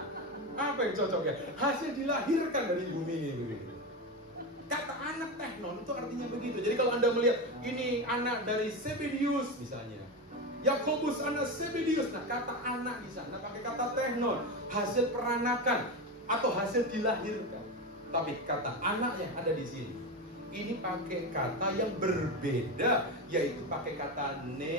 Apa yang cocok ya? Hasil dilahirkan dari bumi ini. Kata anak teknon itu artinya begitu. Jadi kalau Anda melihat ini anak dari Zebedius misalnya, Yakobus anak Zebedius, nah kata anak di sana pakai kata teknon, hasil peranakan atau hasil dilahirkan. Tapi kata anak yang ada di sini, ini pakai kata yang berbeda, yaitu pakai kata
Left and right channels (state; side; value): normal; both; correlation 0.18